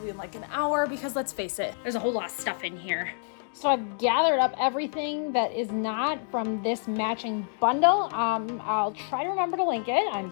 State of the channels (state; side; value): silent; right; 60 dB below the other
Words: in like an hour, because let's face it, there's a whole lot of stuff in here. So I've gathered up everything that is not from this matching bundle. I'll try to remember to link it. I'm